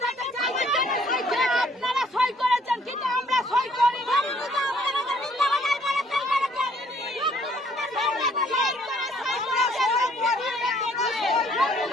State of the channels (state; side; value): normal; both; correlation 0.62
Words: আপনারা সই করেছেন কিন্তু আমরা সই করি